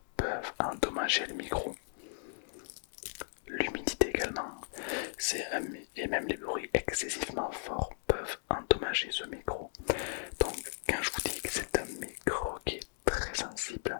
peuvent endommager le micro. L'humidité également. Et même les bruits excessivement forts peuvent endommager ce micro. Donc quand je vous dis que c'est un micro qui est très sensible,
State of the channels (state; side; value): silent; right; digital silence